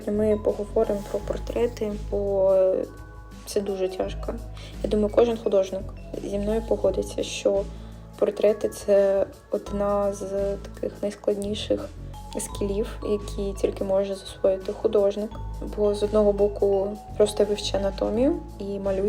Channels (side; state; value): both; identical; correlation 1.00